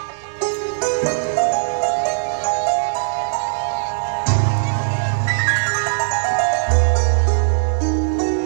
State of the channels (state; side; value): silent; left; digital silence